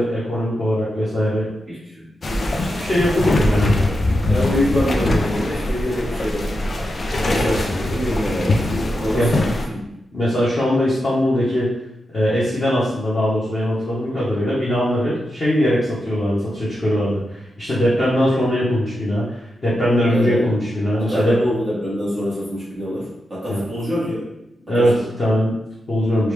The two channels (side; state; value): both; normal; correlation 0.87